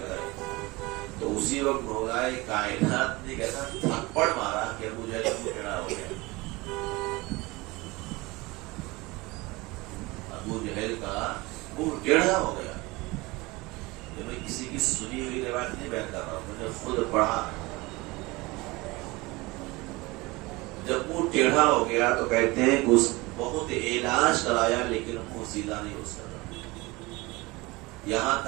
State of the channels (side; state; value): left; quieter; 22.8 dB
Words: لگائی. تو اسی وقت مولا کائنات نے کیسا تھپڑ مارا کہ مجھے ٹیڑھا ہو گیا. ابو جہل کا منہ ٹیڑھا ہو گیا. میں کسی کی سنی ہوئی روایت نہیں بیان کر رہا ہوں, میں نے خود پڑھا. جب منہ ٹیڑھا ہو گیا تو کہتے ہیں کہ اس بہت علاج کرایا لیکن منہ سیدھا نہیں ہو سکا. یہاں